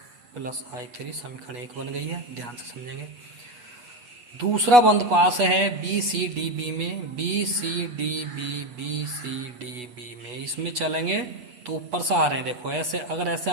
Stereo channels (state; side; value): late; left; 8.2 ms